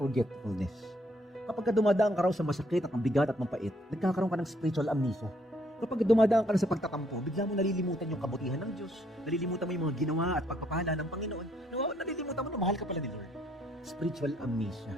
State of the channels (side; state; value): both; normal; correlation 0.68